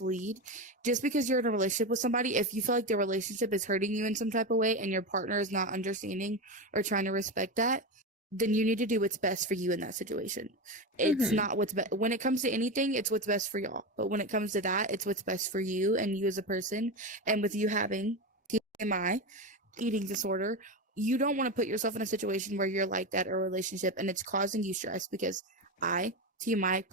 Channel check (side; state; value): both; normal; correlation 0.18